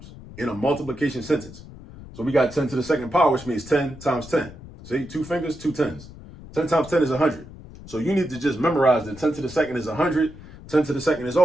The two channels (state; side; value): noise; left; rumble, 17 dB below the sound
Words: in a multiplication sentence. So we got 10 to the second power, which means 10 times 10. See, 2 fingers, 2 tens. 10 times 10 is 100. So you need to just memorize that 10 to the second is 100. 10 to the second is